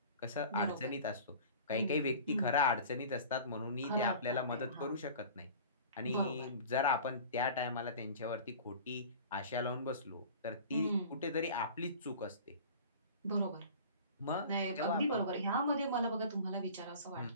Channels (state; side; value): inverted; both; correlation -0.41